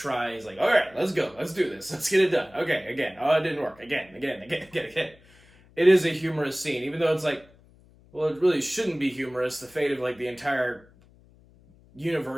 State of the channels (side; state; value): left; noise; hum, 28 dB below the sound